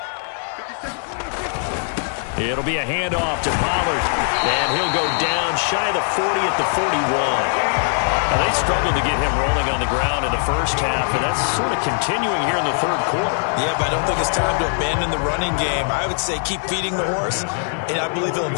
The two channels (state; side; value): silent; right; 60 dB below the other